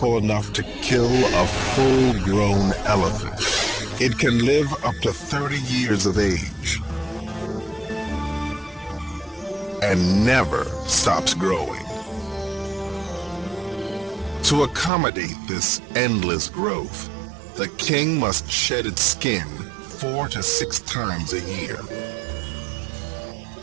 enough to kill a full-grown elephant. It can live up to 30 years of age and never stops growing. To accommodate this endless growth, the king must shed its skin 4 to 6 times a year.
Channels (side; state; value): left; drops out; at 14.9 s